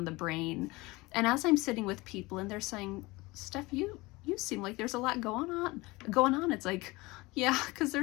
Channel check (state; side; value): quieter; right; 22.4 dB